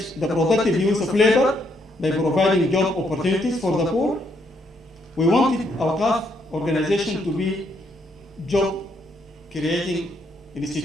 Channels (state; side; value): normal; both; correlation 0.73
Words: the productive use of labor by providing job opportunities for the poor. We wanted our Awqaf organization to be job creating